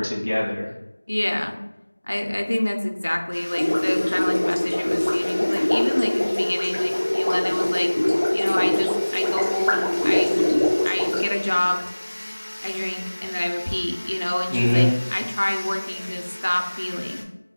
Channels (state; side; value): inverted; both; correlation -1.00